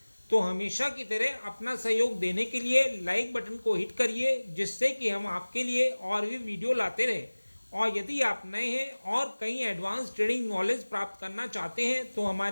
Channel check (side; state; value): both; inverted; correlation -1.00